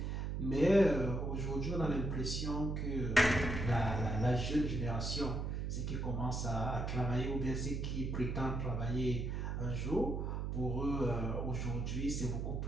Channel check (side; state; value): right; noise; hum, 2 dB below the sound